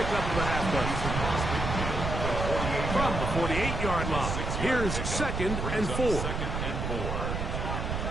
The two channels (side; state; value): right; noise; rumble, 2 dB below the sound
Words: of the halfback. From the 48-yard line, here's 2nd and 4.